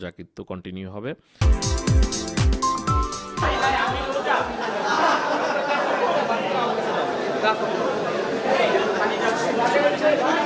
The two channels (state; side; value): identical; both; correlation 1.00